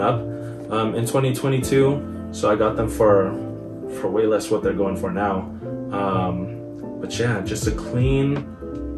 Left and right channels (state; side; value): identical; both; correlation 1.00